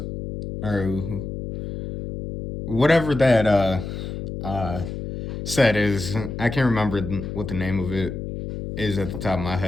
or whatever that set is. I can't remember what the name of it is at the top of my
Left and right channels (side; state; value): left; noise; hum, 7 dB below the sound